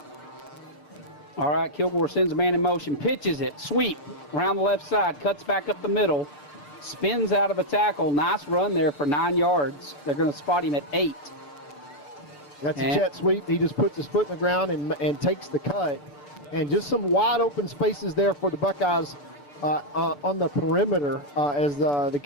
All right, Kilgore sends a man in motion, pitches it, sweep around the left side, cuts back up the middle, spins out of a tackle. Nice run there for 9 yards. They're going to spot him at 8. That's a jet sweep. He just puts his foot in the ground and takes the cut. And just some wide open spaces there for the Buckeyes on the perimeter as the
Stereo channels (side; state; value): right; late; 6.9 ms